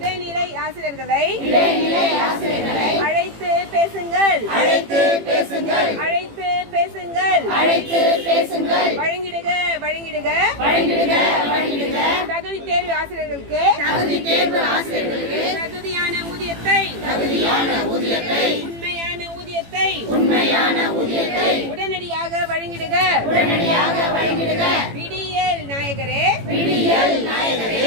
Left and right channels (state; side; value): late; left; 18 ms